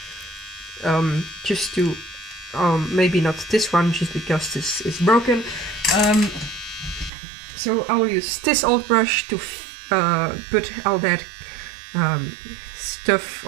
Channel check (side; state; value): left; drops out; at 7.1 s